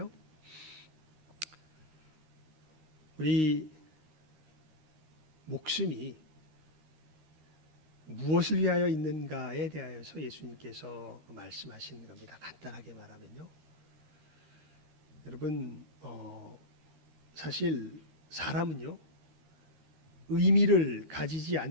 우리 목숨이 무엇을 위하여 있는가에 대하여서 예수님께서 말씀하시는 겁니다. 간단하게 말하면요. 여러분, 사실 사람은요, 의미를 가지지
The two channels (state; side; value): late; left; 13 ms